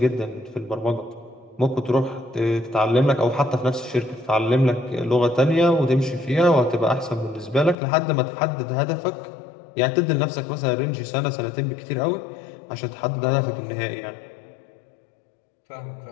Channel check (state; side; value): drops out; right; at 7.8 s